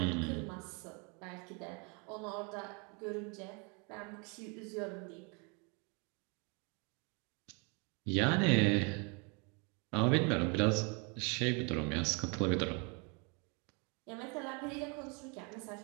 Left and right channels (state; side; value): quieter; left; 33.1 dB